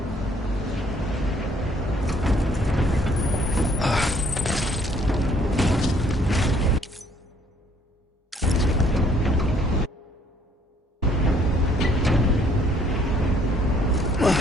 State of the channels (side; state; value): both; normal; correlation 0.62